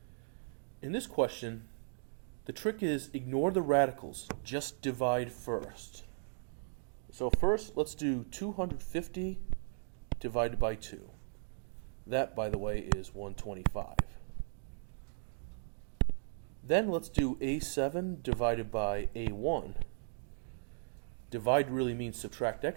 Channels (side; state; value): left; silent; digital silence